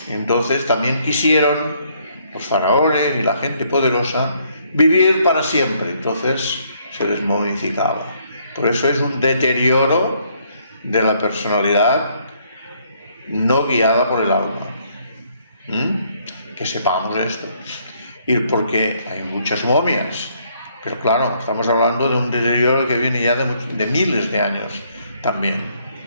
Entonces también quisieron los faraones y la gente poderosa vivir para siempre, entonces se les momificaba. Por eso es un deterioro de la personalidad no guiada por el alma. Que sepamos esto. Y porque hay muchas momias, pero claro, estamos hablando de un deterioro que viene ya de miles de años también.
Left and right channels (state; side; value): inverted; both; correlation -0.68